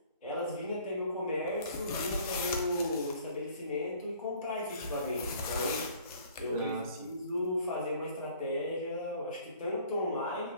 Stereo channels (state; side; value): inverted; both; correlation -0.54